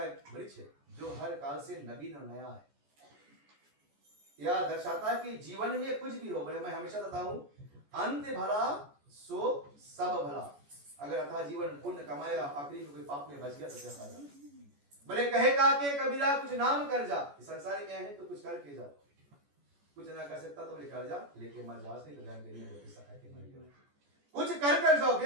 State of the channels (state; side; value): late; left; 14 ms